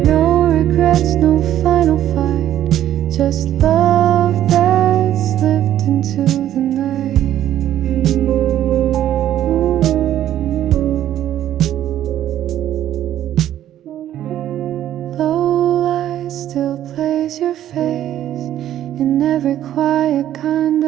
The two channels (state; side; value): quieter; left; 11.9 dB